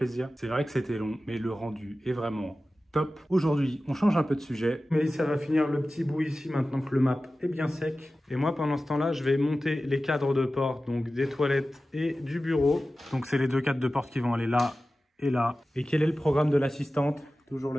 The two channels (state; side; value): normal; both; correlation 0.95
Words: C'est vrai que c'était long, mais le rendu est vraiment top. Aujourd'hui, on change un peu de sujet. Mélissa va finir le petit bout ici maintenant que le map est bien sec. Et moi, pendant ce temps-là, je vais monter les cadres de porte, donc des toilettes et du bureau. Donc c'est les deux cadres de porte qui vont aller là et là. Et quel est le programme de l'assistante? Toujours